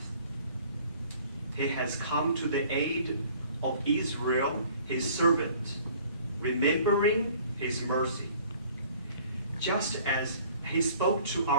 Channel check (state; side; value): inverted; both; correlation -0.53